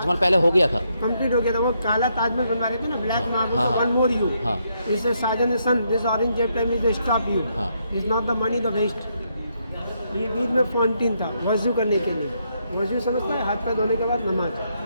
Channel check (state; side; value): inverted; both; correlation -0.77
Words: पहले हो गया था, कंप्लीट हो गया था। वो काला ताजमहल बनवा रहे थे ना, ब्लैक मार्बल, हाँ, वन मोर यू। हाँ। इससे शाहजहाँ ने सन this orange jet time is stop you, हाँ। Is not the money the waste. ये बीच में फाउंटेन था वजू करने के लिए। वजू समझता है? हाथ पैर धोने के बाद नमाज,